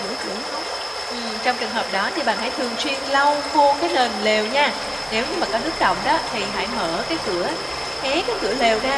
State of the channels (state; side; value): identical; both; correlation 1.00